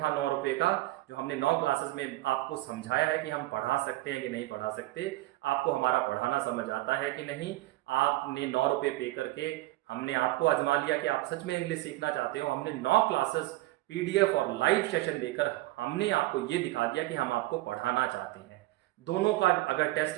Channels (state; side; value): quieter; left; 18.3 dB